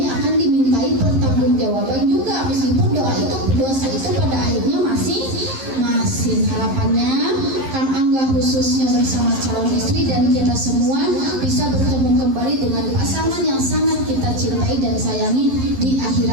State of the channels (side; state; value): left; late; 11 ms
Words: akan dimintai pertanggungjawaban juga, meskipun dosa itu pada akhirnya masing. Harapannya Kang Angga khususnya bersama calon istri dan kita semua bisa bertemu kembali dengan pasangan yang sangat kita cintai dan sayangi di